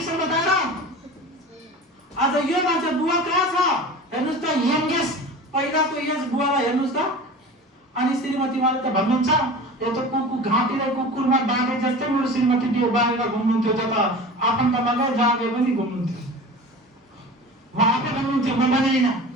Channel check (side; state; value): both; normal; correlation 0.35